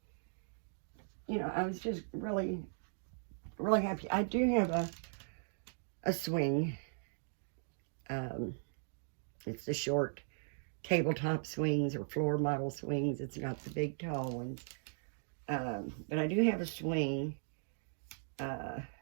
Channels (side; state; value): left; silent; digital silence